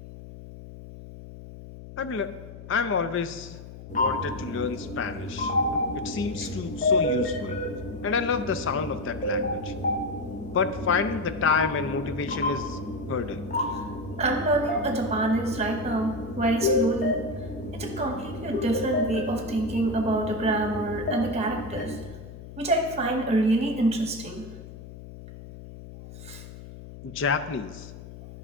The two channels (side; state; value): left; noise; hum, 14 dB below the sound